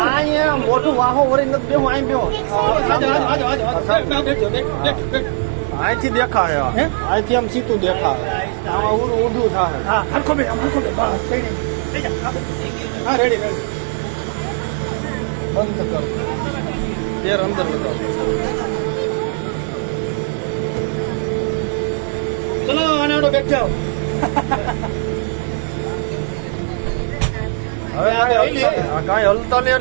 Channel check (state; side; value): silent; left; 64 dB below the other